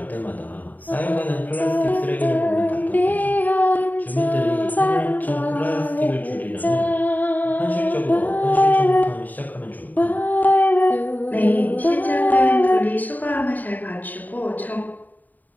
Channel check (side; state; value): right; late; 0.084 ms